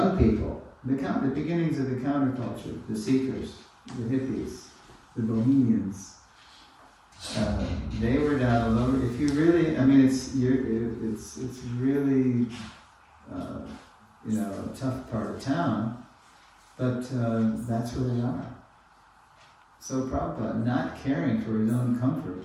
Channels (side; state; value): both; identical; correlation 1.00